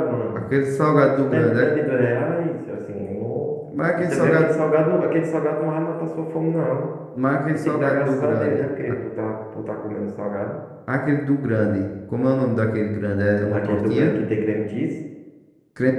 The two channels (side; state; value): both; identical; correlation 1.00